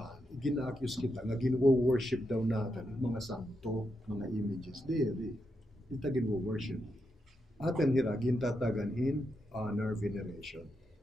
gina-accuse kita nga ginwo-worship daw natin mga santo, mga images. Diri, ita ginwo-worship. Atin hira, gintataganhin, honor, veneration.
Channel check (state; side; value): normal; both; correlation 0.84